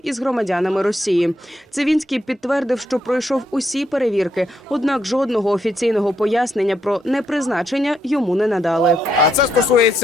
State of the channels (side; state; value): both; normal; correlation 0.77